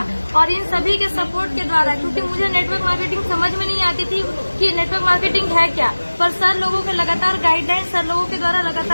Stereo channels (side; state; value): both; inverted; correlation -1.00